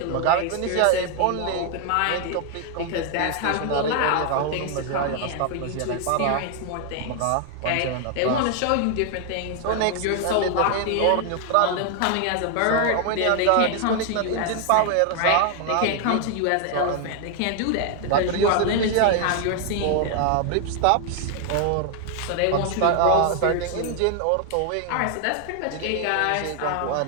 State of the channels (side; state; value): both; different; correlation 0.00